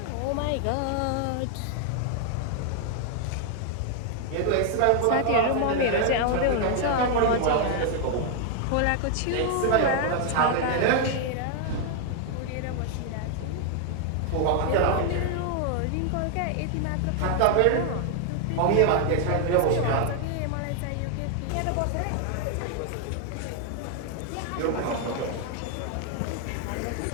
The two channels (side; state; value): both; different; correlation 0.00